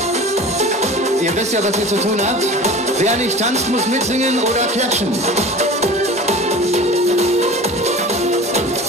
Ihr wisst ja, was ihr zu tun habt. Wer nicht tanzt, muss mitsingen oder klatschen.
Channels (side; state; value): both; normal; correlation 0.37